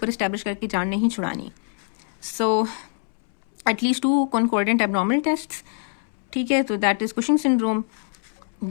इस्टेब्लिश करके जान नहीं छुड़ानी। So at least 2 concordant abnormal test. ठीक है, तो that is Cushing syndrome.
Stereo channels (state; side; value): silent; right; 63 dB below the other